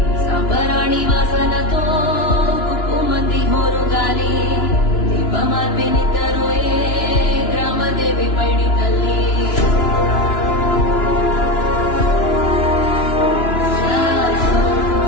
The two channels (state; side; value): late; right; 2.9 ms